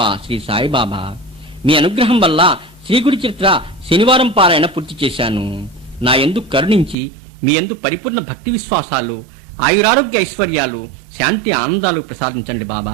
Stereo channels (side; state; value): left; drops out; at 7.0 s